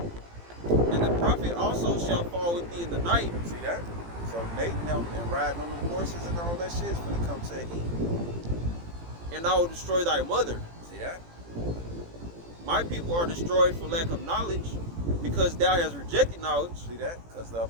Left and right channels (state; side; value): late; left; 18 ms